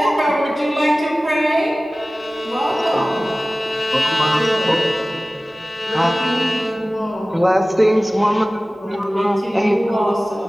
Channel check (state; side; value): normal; both; correlation 0.97